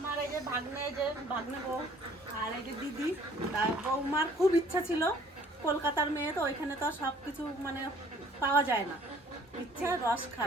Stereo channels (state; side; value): normal; both; correlation 0.56